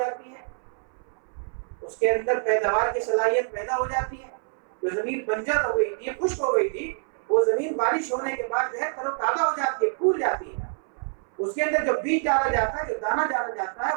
ہے، اس کے اندر پیداوار کی صلاحیت پیدا ہو جاتی ہے۔ جو زمین بنجر ہو گئی تھی، خشک ہو گئی تھی، وہ زمین بارش ہونے کے بعد جو ہے تر و تازہ ہو جاتی ہے، پھول جاتی ہے، اس کے اندر جو بیج ڈالا جاتا ہے، جو دانہ ڈالا جاتا ہے،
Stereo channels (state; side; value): silent; left; 58 dB below the other